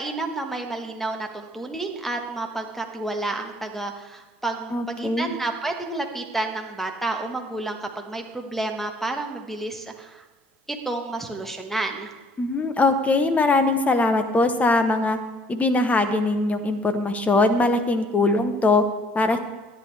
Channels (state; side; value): normal; both; correlation 0.60